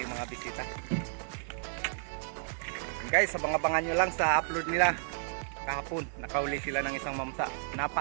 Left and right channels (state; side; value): silent; left; 56 dB below the other